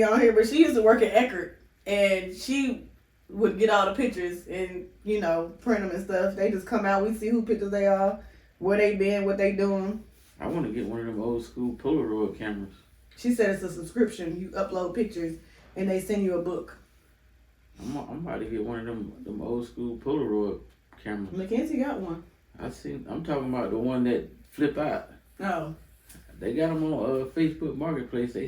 on here, but she used to work at Eckerd, and she would get all the pictures and, print them and stuff. They just come out, we see who pictures they are, where they been, what they doing. I want to get one of them old school Polaroid cameras. She said it's a subscription. You upload pictures and they send you a book. I'm about to get one of them old school Polaroid cameras. Mackenzie got one. I'm talking about the one that flip out. Oh. They got them on Facebook Marketplace.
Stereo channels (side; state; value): both; identical; correlation 1.00